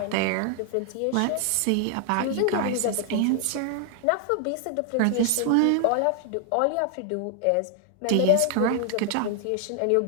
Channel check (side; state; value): both; different; correlation 0.00